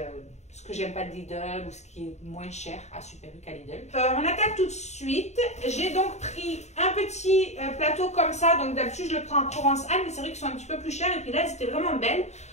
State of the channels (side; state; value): right; late; 0.33 ms